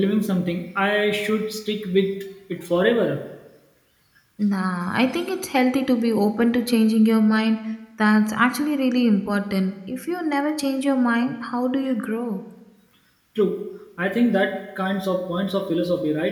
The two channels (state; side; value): identical; both; correlation 1.00